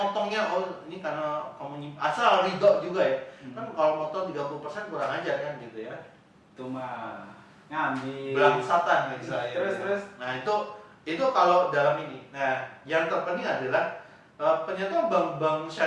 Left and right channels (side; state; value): both; identical; correlation 1.00